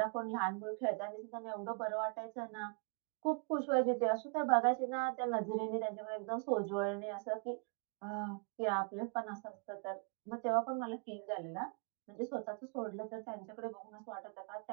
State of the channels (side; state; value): left; quieter; 39.3 dB